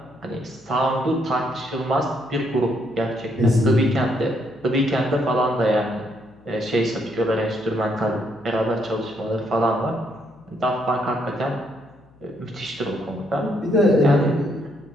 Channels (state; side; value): noise; left; hum, 29 dB below the sound